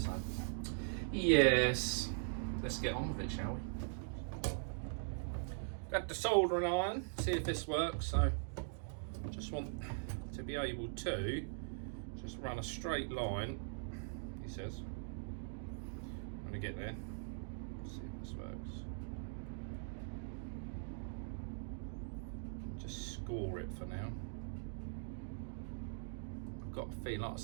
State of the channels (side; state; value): left; silent; digital silence